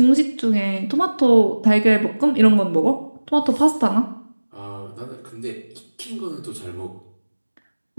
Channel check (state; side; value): inverted; both; correlation -1.00